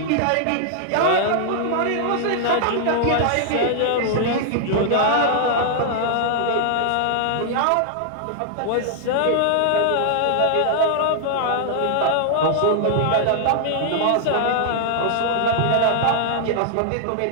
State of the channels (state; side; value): different; both; correlation -0.01